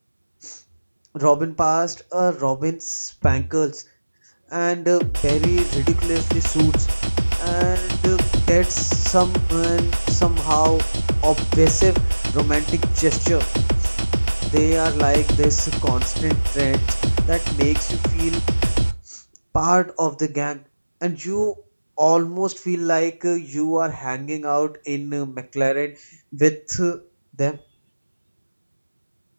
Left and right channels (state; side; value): inverted; both; correlation -1.00